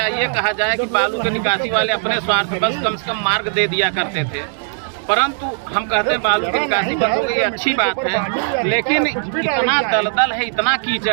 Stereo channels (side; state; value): left; silent; digital silence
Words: कहा जाए कि बालू की निकासी वाले अपने स्वार्थ बस कम से कम मार्ग दे दिया करते थे, परंतु हम कहते हैं बालू की निकासी बंद हो गई, अच्छी बात है। लेकिन इतना दलदल है, इतना